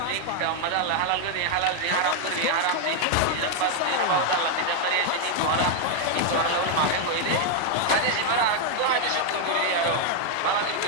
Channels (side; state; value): both; different; correlation 0.00